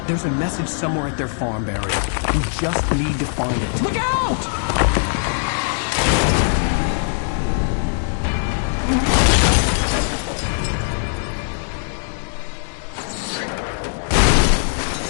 There's a message somewhere at their farm, Barry. We just need to find it. Look out!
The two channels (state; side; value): silent; right; 65 dB below the other